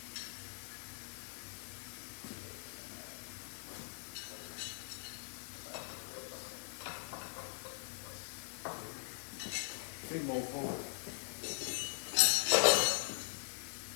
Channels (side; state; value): right; silent; digital silence